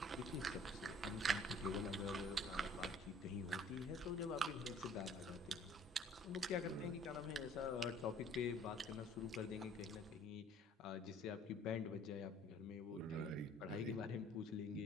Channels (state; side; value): normal; both; correlation 0.54